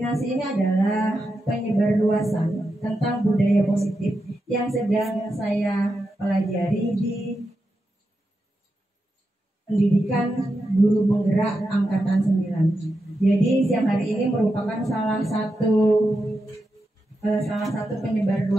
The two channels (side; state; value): both; normal; correlation 0.88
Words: ini adalah penyebarluasan tentang budaya positif yang sedang saya pelajari di pendidikan guru penggerak angkatan 9. Jadi siang hari ini merupakan salah satu